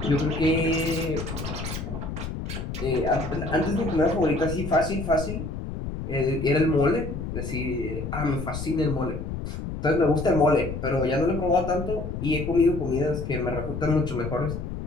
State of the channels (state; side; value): noise; left; rumble, 6 dB below the sound